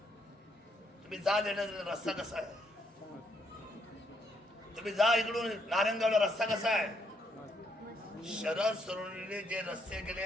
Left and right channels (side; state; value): both; normal; correlation 0.74